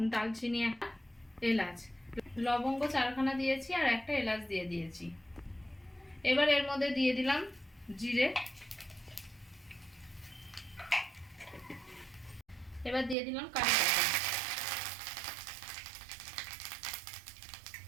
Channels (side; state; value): left; drops out; at 13.2 s